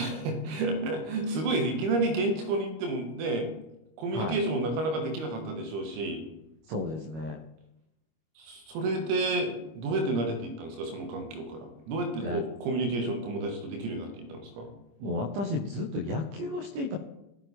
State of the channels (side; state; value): left; late; 25 ms